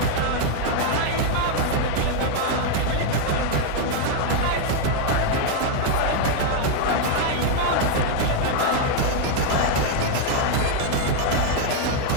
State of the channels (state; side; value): different; both; correlation 0.00